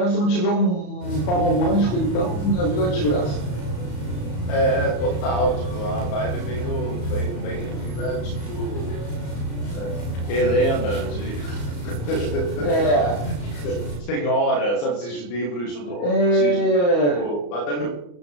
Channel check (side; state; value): right; late; 34 ms